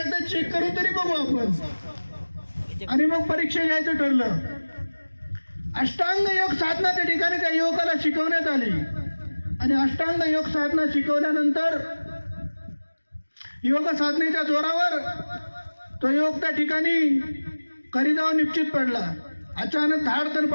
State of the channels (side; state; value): both; inverted; correlation -1.00